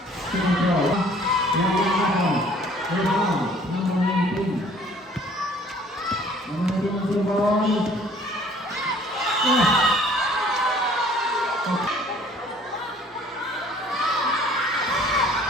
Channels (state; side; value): normal; both; correlation 0.55